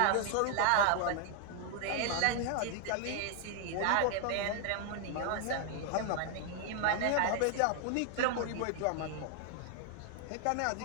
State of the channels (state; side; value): different; both; correlation 0.00